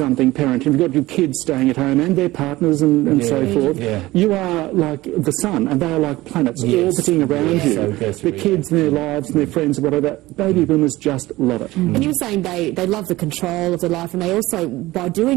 parent and you've got your kids staying at home and their partners and so forth, you are like the sun, and they are like planets orbiting around you. The kids and their lives and their friends and whatever, baby boomers just love it. And you were saying they love the control of their life, and they also, by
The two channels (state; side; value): quieter; left; 18.3 dB